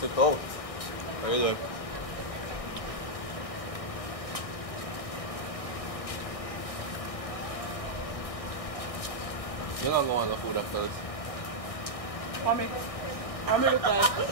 it out. Very good. You're not going to food after this. Mommy, I'm going to try.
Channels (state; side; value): late; right; 1.6 ms